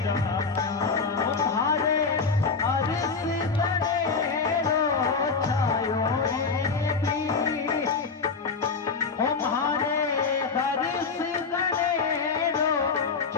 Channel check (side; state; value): right; quieter; 4.9 dB